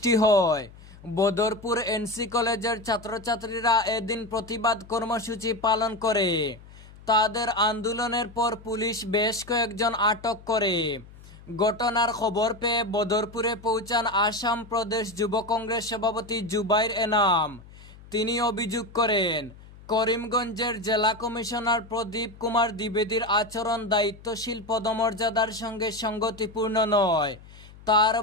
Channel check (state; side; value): noise; left; hum, 20 dB below the sound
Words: হয়। বদরপুর এনসি কলেজের ছাত্রছাত্রীরা এদিন প্রতিবাদ কর্মসূচি পালন করে। তাদের আন্দোলনের পর পুলিশ বেশ কয়েকজন আটক করে। ঘটনার খবর পেয়ে বদরপুরে পৌঁছান আসাম প্রদেশ যুব কংগ্রেস সভাপতি জুবাইর এনাম। তিনি অভিযোগ করেন, করিমগঞ্জের জেলা কমিশনার প্রদীপ কুমার দ্বিবেদীর আচরণ দায়িত্বশীল পদমর্যাদার সঙ্গে সঙ্গতিপূর্ণ নয়। তার